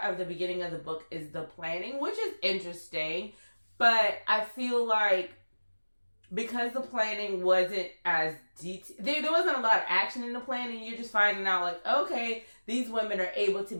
of the beginning of the book is the planning, which is interesting, but I feel like because the planning wasn't as detailed, there wasn't a lot of action in the planning. You're just finding out like, okay, these women are able to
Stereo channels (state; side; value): inverted; both; correlation -1.00